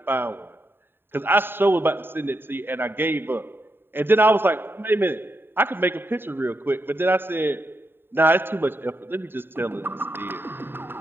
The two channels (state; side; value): late; left; 0.10 ms